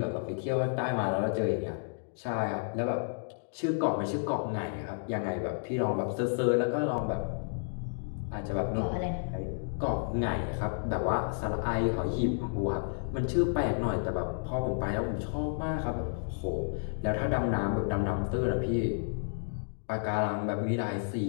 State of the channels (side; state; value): right; silent; digital silence